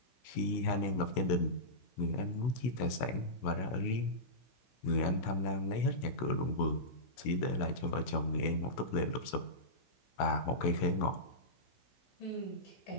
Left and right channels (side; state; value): right; late; 16 ms